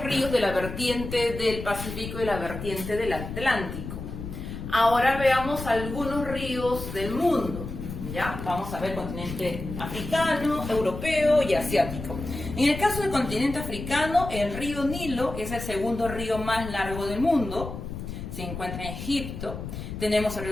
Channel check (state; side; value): noise; left; rumble, 8 dB below the sound